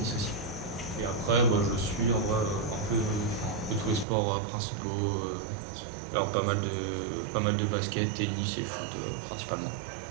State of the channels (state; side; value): drops out; left; at 4.0 s